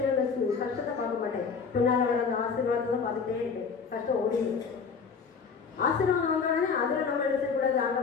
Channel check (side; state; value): right; quieter; 5.6 dB